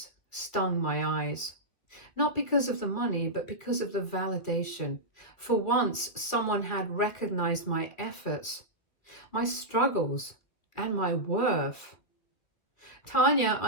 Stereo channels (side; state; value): right; late; 2.6 ms